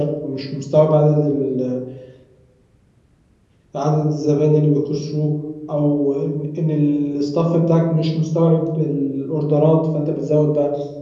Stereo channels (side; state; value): both; identical; correlation 1.00